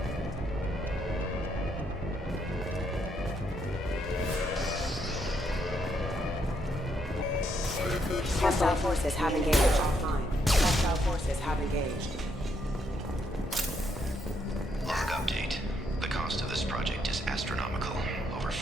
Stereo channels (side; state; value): both; normal; correlation 0.75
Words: Hostile forces have engaged. Hostile forces have engaged. Log update. The cost of over